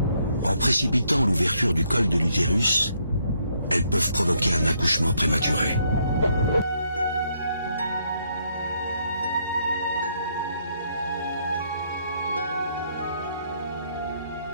En précipitant l'ouverture du col de l'utérus, elles peuvent provoquer un accouchement prématuré.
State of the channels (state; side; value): inverted; both; correlation -0.72